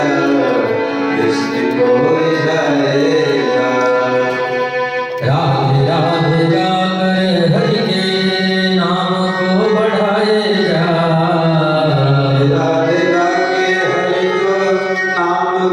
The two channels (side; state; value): both; identical; correlation 1.00